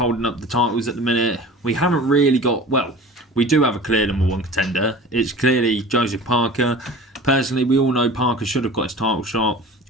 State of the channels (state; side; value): normal; both; correlation 0.40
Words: up the titles at the minute. We haven't really got, well, we do have a clear number one contender. It's clearly Joseph Parker. Personally, we all know Parker should have got his title shot